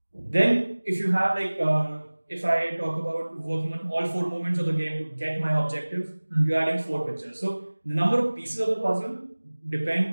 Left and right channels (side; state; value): both; inverted; correlation -1.00